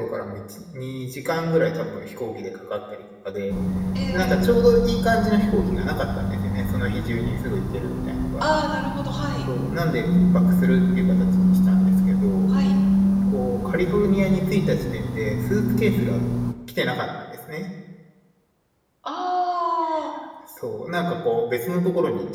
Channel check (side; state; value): both; identical; correlation 1.00